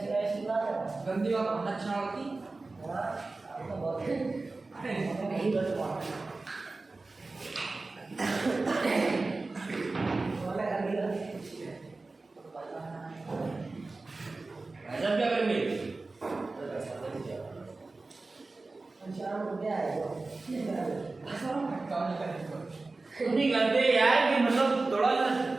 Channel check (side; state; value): left; quieter; 3.5 dB